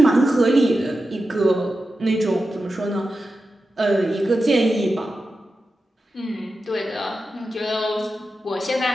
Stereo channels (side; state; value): both; normal; correlation 0.91